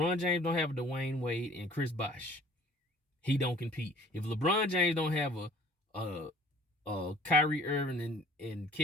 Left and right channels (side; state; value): both; normal; correlation 0.52